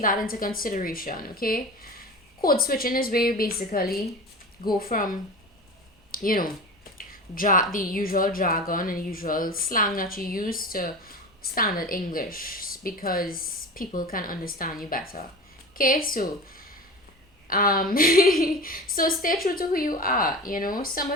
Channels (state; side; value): normal; both; correlation 0.32